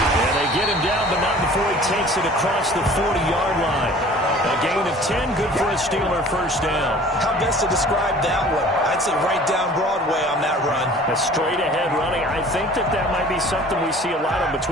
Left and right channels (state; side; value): normal; both; correlation 0.47